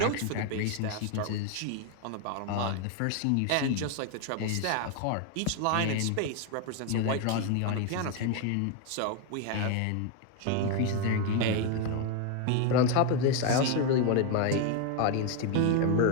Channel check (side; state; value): both; different; correlation 0.01